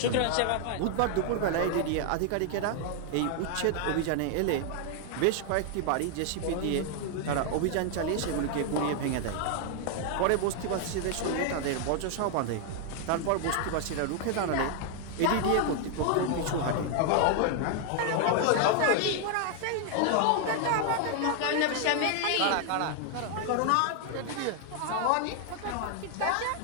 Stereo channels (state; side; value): different; both; correlation 0.00